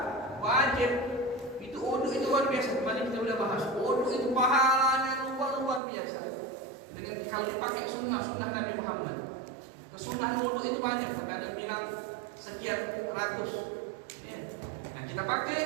wajib itu wudu itu luar biasa. Kemarin kita sudah bahas. Wudu itu pahalanya luar biasa. Dengan kalau dipakai sunnah Nabi Muhammad. Kesunahan wudu itu banyak. Karena bilang sekian ratus. Ya. Nah kita pakai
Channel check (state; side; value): drops out; left; at 5.8 s